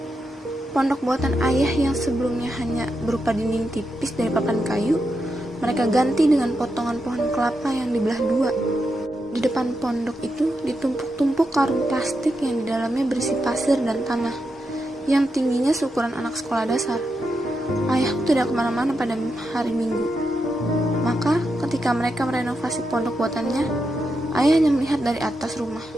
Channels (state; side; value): normal; both; correlation 0.86